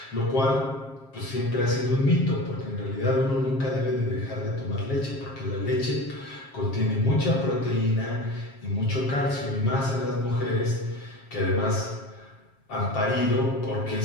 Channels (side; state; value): right; late; 7.4 ms